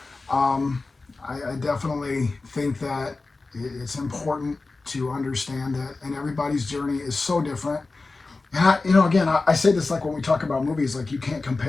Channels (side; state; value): right; quieter; 3.6 dB